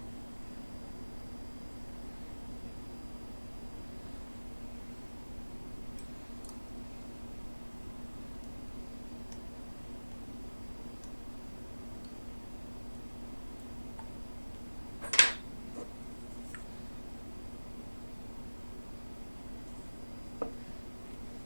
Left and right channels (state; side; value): inverted; both; correlation -1.00